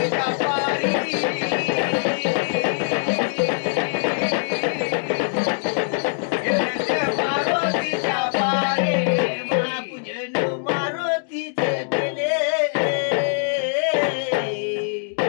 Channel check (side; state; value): right; silent; digital silence